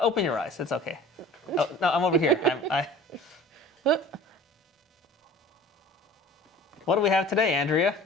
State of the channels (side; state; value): both; normal; correlation 0.44